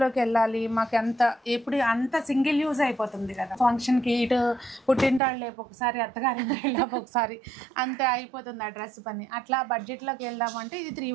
వెళ్ళాలి, మాకు అంత సింగిల్ యూజ్ అయిపోతుంది కదా. ఫంక్షన్కి ఇటు పుట్టింటాళ్ళు లేపు ఒకసారి, అత్తగారింటాళ్ళు లేపు ఒకసారి, అంతే అయిపోతుంది ఆ డ్రెస్ పని. అట్లా బడ్జెట్లోకి వెళ్దామంటే ఇది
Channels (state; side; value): drops out; left; at 5.2 s